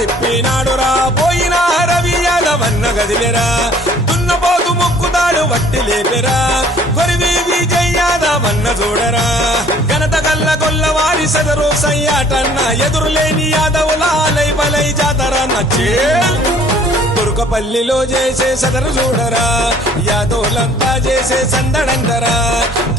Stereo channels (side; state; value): both; normal; correlation 0.56